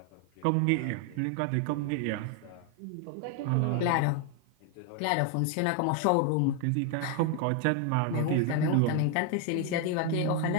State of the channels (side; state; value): both; different; correlation 0.01